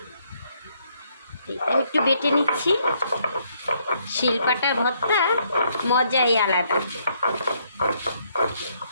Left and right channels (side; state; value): both; inverted; correlation -0.71